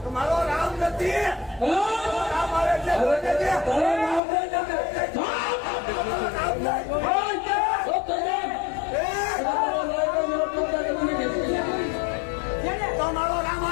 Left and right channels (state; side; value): drops out; right; at 4.2 s